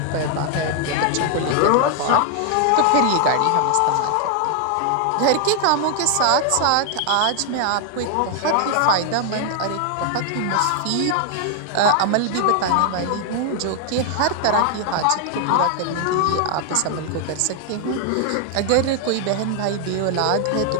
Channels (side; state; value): both; different; correlation 0.00